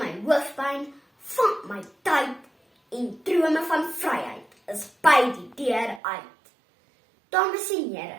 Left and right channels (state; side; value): drops out; left; at 6.0 s